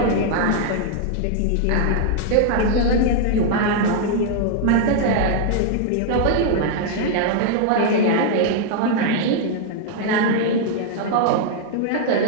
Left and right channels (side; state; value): both; different; correlation 0.00